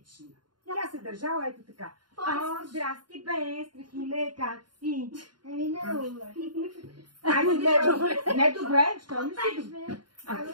Тя се държала ето така. О, здрасти бе, Страхиле, как си? Ами не добре. Ами не добре, що не си добре? А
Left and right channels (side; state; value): left; late; 0.71 ms